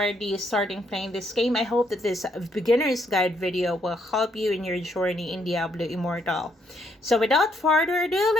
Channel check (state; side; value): normal; both; correlation 0.72